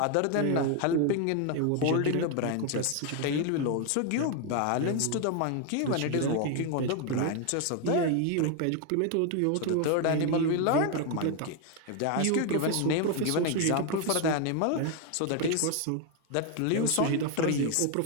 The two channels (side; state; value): both; different; correlation 0.01